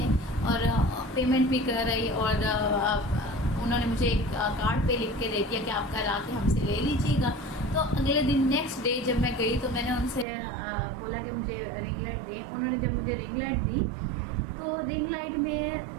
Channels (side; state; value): left; drops out; at 10.2 s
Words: और पेमेंट भी कर रही। और उन्होंने मुझे एक कार्ड पे लिख के दे दिया कि आप कल आके हमसे ले लीजिएगा। तो अगले दिन नेक्स्ट डे जब मैं गई तो मैंने उनसे बोला कि मुझे रिंग लाइट दें। उन्होंने जब मुझे रिंग लाइट दी तो रिंग लाइट